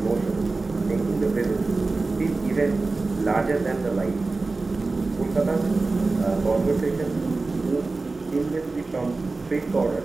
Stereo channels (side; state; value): left; quieter; 3.6 dB